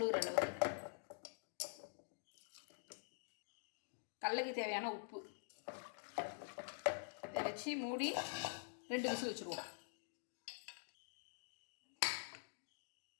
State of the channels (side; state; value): right; silent; digital silence